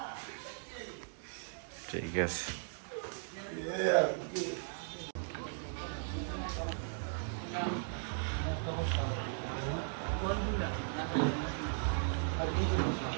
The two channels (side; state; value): left; silent; digital silence